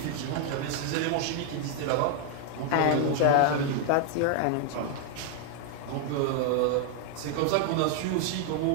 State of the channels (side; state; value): both; different; correlation 0.00